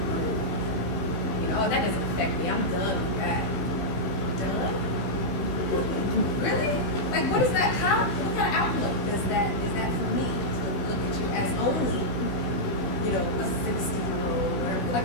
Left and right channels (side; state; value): right; late; 16 ms